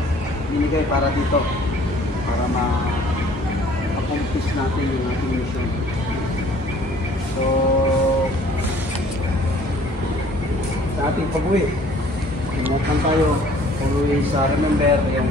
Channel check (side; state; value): both; normal; correlation 0.55